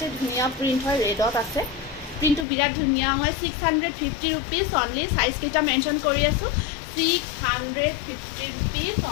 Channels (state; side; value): drops out; right; at 2.5 s